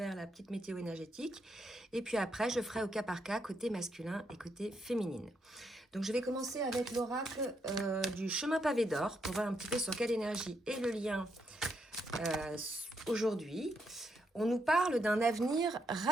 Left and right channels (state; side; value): normal; both; correlation 0.78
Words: la petite météo énergétique et puis après je ferai au cas par cas côté masculin et côté féminine. Donc je vais commencer avec l'oracle du chemin pavé d'or pour voir un petit peu sur quelle énergie est le lien aujourd'hui. On nous parle d'un avenir